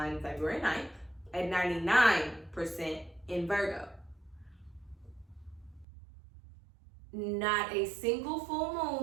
February 9th at 99% in Virgo. Not a single full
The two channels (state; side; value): drops out; left; at 5.9 s